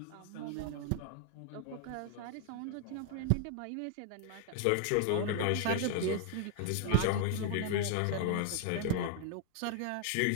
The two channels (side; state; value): both; different; correlation 0.00